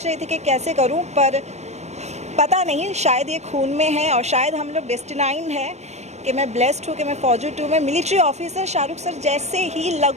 रही थी कि कैसे करूं, पर पता नहीं, शायद ये खून में है और शायद हम लोग डेस्टिनाइन है कि मैं ब्लेस्ड हूँ कि मैं फौजी 2 में मिलिट्री ऑफिसर शाहरुख सर जैसे ही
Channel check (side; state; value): left; late; 0.32 ms